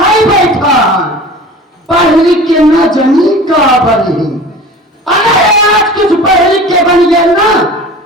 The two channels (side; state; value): both; normal; correlation 0.39